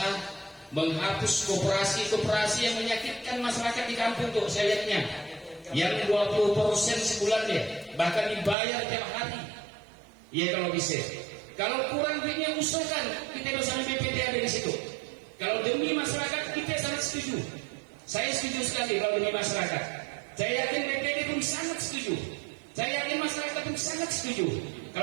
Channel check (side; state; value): left; drops out; at 8.6 s